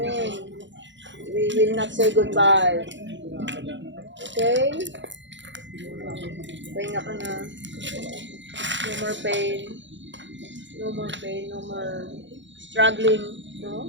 We will not say goodbye. Okay? Pahinga ka na. No more pain. No more pain, no more struggling, no?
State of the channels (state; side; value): late; left; 0.54 ms